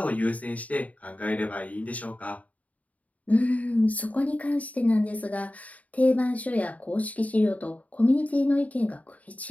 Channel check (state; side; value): late; right; 0.070 ms